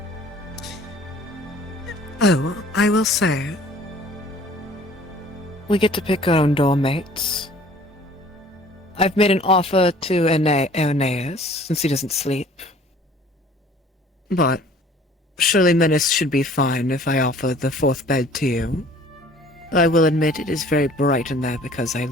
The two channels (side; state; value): both; normal; correlation 0.52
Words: Oh, I will say, we get to pick our own doormates. I've made an offer to Aeneas, since he doesn't sleep. But surely Menace should be fine if I offer the fourth bed to you. I will admit it is very bright in there because I